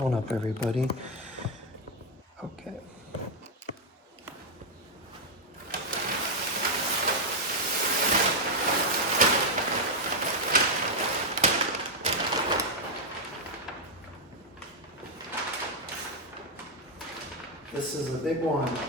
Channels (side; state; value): both; normal; correlation 0.01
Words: up, everybody. Okay. This is a big one.